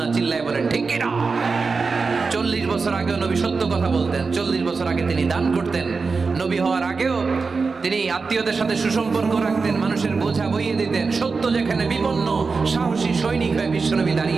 চিল্লায় বলেন ঠিক কিনা? 40 বছর আগেও নবী সত্য কথা বলতেন, 40 বছর আগে তিনি দান করতেন, নবী হওয়ার আগেও তিনি আত্মীয়দের সাথে সুসম্পর্ক রাখতেন, মানুষের বোঝা বইয়ে দিতেন, সত্য যেখানে বিপন্ন সাহসী সৈনিক হয়ে বিশ্বনবী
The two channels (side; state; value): left; quieter; 4.6 dB